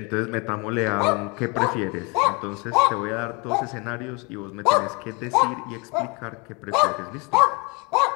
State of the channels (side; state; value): right; quieter; 29.7 dB